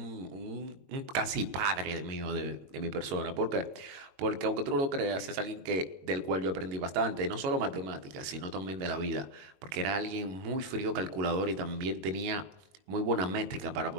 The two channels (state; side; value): late; left; 21 ms